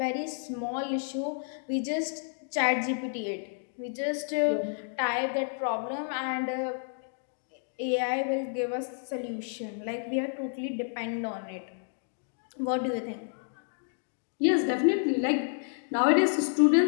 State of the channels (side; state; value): right; silent; digital silence